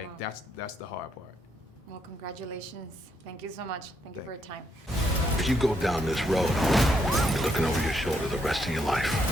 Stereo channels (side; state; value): both; normal; correlation 0.76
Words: Wow. that's the hard part. Well, congratulations. Thank you so much. Thank you for your time. If you go down this road, you're looking over your shoulder the rest of your life.